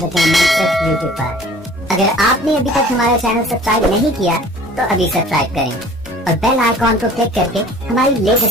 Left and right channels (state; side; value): normal; both; correlation 0.48